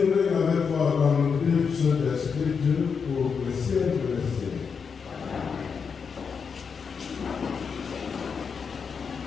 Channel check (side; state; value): right; quieter; 6.0 dB